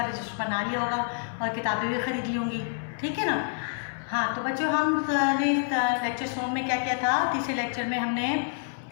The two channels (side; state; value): right; silent; digital silence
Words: रजिस्टर बना लिया होगा और किताबें भी ख़रीद ली होंगी, ठीक है ना। हाँ, तो बच्चों हमने लेक्चर सोम में क्या किया था? तीसरे लेक्चर में हमने